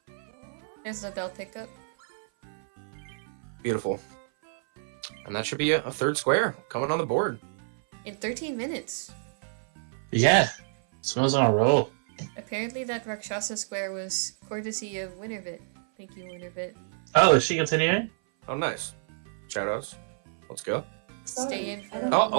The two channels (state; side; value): silent; left; 56 dB below the other